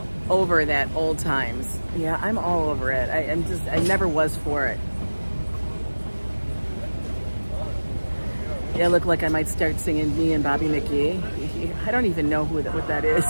over that old times. Yeah, I'm all over it. I never was for it. Yeah, I look like I might start singing Me and Bobby McGee. I don't even know what that is.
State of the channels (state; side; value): inverted; both; correlation -1.00